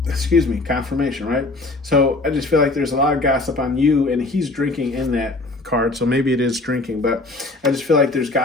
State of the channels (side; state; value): right; quieter; 3.1 dB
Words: Excuse me, confirmation, right? So I just feel like there's a lot of gossip on you, and he's drinking in that card, so maybe it is drinking, but I just feel like there's